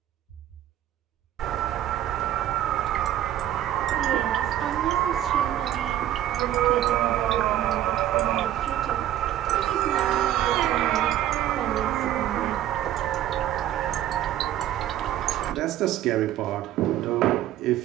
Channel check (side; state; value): left; quieter; 12.3 dB